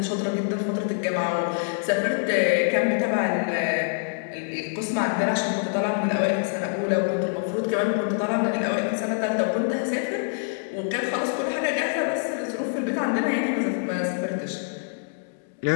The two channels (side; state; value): right; silent; digital silence